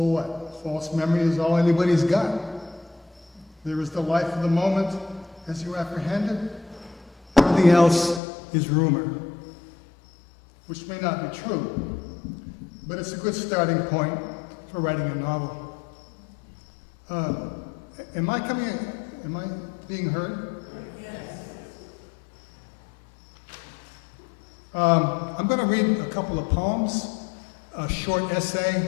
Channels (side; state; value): right; drops out; at 8.2 s